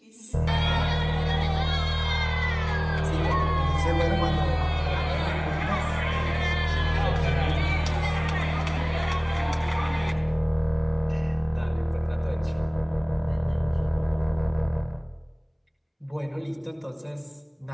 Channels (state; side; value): identical; both; correlation 1.00